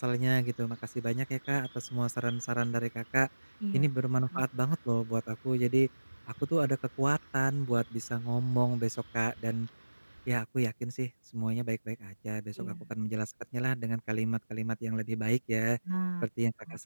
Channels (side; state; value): both; inverted; correlation -1.00